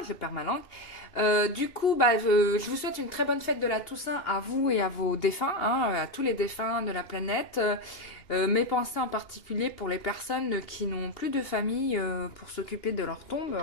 perds ma langue. Du coup, je vous souhaite une très bonne fête de la Toussaint à vous et à vos défunts, hein, à tous les défunts de la planète. Mes pensées en particulier pour les personnes qui n'ont plus de famille pour s'occuper de leur tombe.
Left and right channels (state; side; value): late; right; 2.8 ms